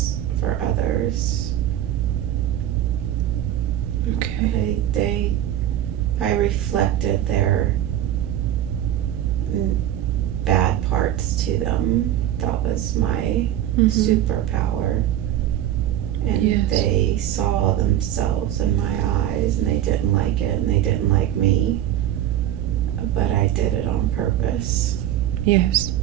for others. Okay. I reflected their bad parts to them. That was my superpower. And yes. They saw themselves in my eyes and they didn't like it and they didn't like me. But I did it on purpose. Yes.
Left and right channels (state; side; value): quieter; left; 11.9 dB